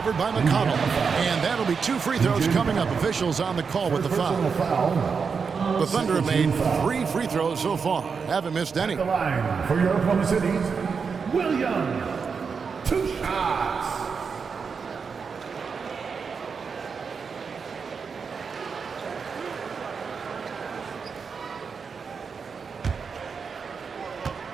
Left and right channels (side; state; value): left; quieter; 5.7 dB